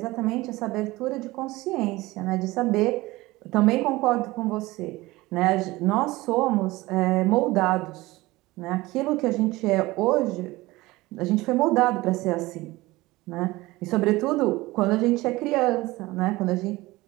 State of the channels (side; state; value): left; quieter; 20.0 dB